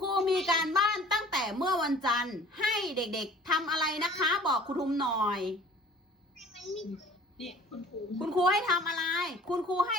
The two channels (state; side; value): normal; both; correlation 0.49